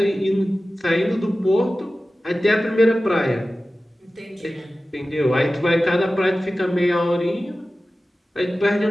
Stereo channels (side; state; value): both; normal; correlation 0.95